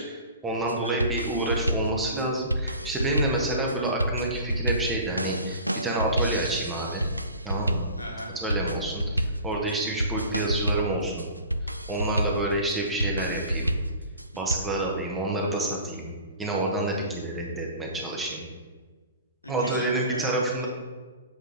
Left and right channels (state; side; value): inverted; both; correlation -0.40